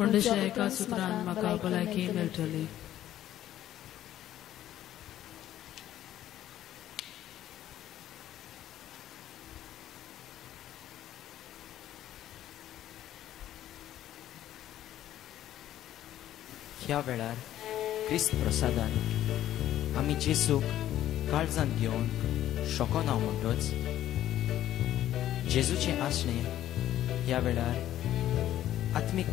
दुसऱ्या एका सुत्रान म्हाका भलायकी मेळटली. ह्या वेळार क्रिस्त प्रसादान आमी जेसूक काळजांत घेवन शोकोन हांव म्हणटोच जेजूचें आसणें ह्या वेळार आत्मीक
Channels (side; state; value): right; quieter; 12.6 dB